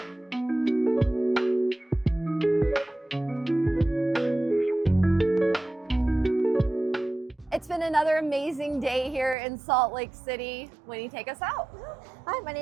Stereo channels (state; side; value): drops out; left; at 9.3 s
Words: amazing day here in Salt Lake City. Wenny, take us out. Hi, my